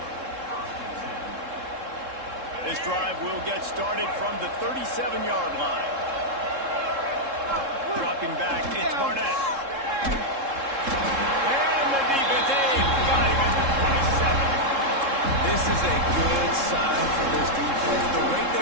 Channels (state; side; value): late; left; 3.7 ms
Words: This drive will get started from the 37-yard line. Dropping back, it's Barnett. And the defense got him at the 27. This is a good sign for this defense. The rate